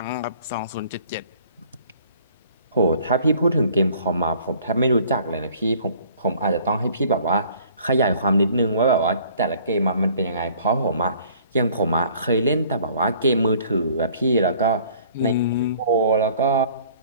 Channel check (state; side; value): inverted; both; correlation -0.55